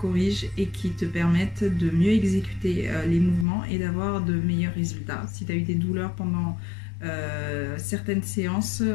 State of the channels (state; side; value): drops out; right; at 3.5 s